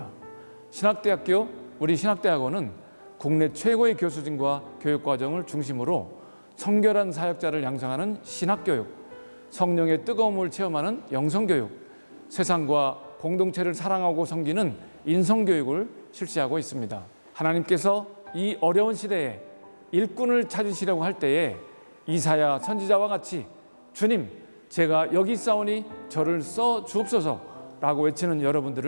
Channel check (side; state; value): both; inverted; correlation -1.00